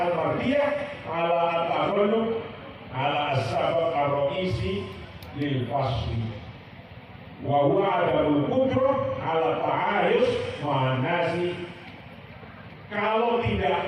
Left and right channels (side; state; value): both; identical; correlation 1.00